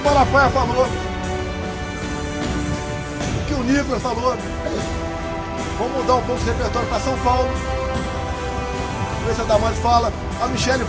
Malafaia falou, o que o Nicolas falou. Vamos mudar um pouco esse repertório para São Paulo. Ver se a Damares fala, a Michele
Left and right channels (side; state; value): both; identical; correlation 1.00